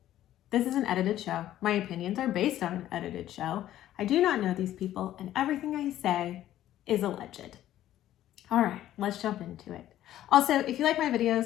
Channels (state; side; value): quieter; right; 12.9 dB